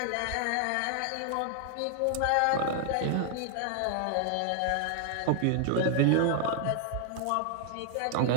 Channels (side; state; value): both; different; correlation 0.00